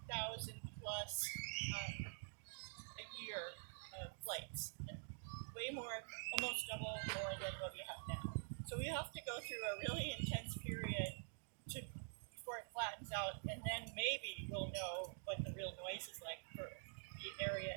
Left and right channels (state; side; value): silent; left; digital silence